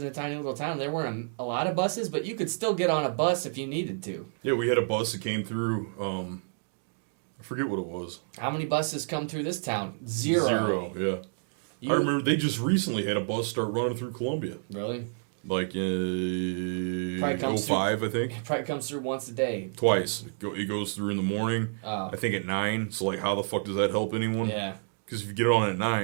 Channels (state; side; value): silent; left; digital silence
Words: a tiny little town. There weren't a lot of buses, but you could still get on a bus if you needed to. Yeah, we had a bus that came through, I forget what it was. How many buses come through this town? Zero, yeah. I remember they just recently had a bus start running through Columbia. Really? Like in 05, I think. It probably comes through once a day. Twice. It goes through in the morning, I think at 9. So, like, how the fuck does that help anyone? Yeah. Because if you get on at